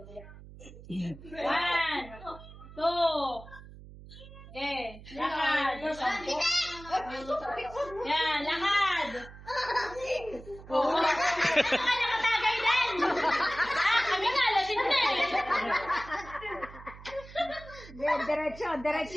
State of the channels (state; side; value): noise; right; hum, 17 dB below the sound